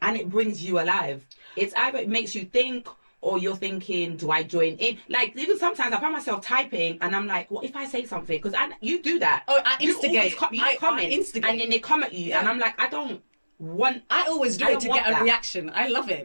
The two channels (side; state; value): both; inverted; correlation -1.00